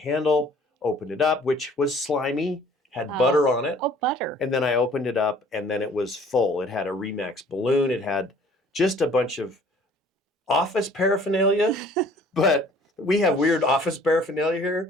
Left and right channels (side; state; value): both; normal; correlation 0.54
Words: opened it up, which was slimy, had butter on it. Oh, butter. And then I opened it up and then it was full. It had a REMAX balloon. It had just a bunch of office paraphernalia, but we have weird office paraphernalia here.